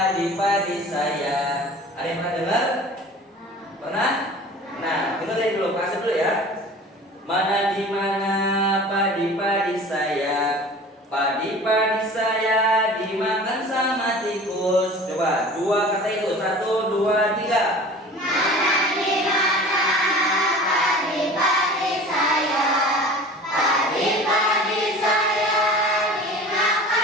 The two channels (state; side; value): normal; both; correlation 0.41